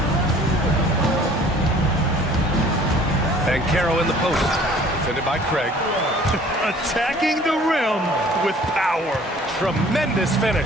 Banchero in the post. Defended by Craig. Attacking the rim with power. Tremendous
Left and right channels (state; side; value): normal; both; correlation 0.52